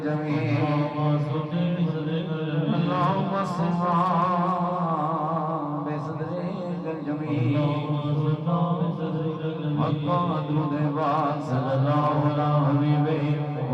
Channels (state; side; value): identical; both; correlation 1.00